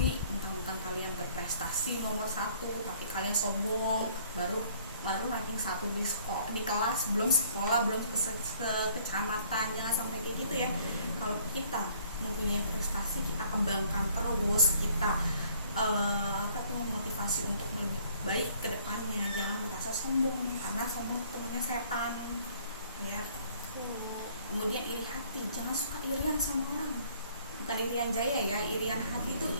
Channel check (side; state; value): both; inverted; correlation -0.59